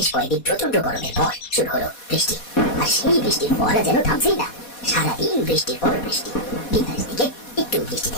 কয়েকদিন প্রচন্ড গরমের পর শুরু হলো বৃষ্টি। আর সেই বৃষ্টির ফোঁটা যেন থামছেই না। সারাদিন বৃষ্টির পর বৃষ্টি। বিকালের দিকে একটু বৃষ্টি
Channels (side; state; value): right; late; 4.2 ms